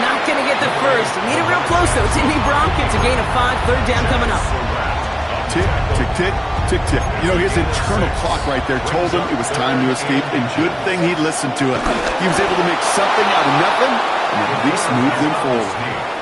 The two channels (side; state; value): both; identical; correlation 1.00